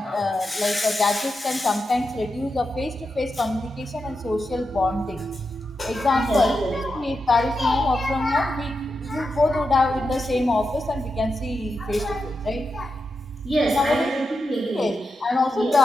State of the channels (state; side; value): normal; both; correlation 0.88